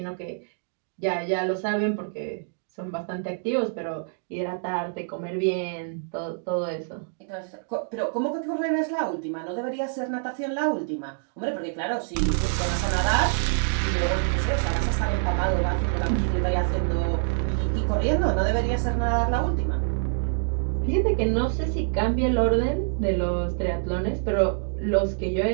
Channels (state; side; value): silent; left; digital silence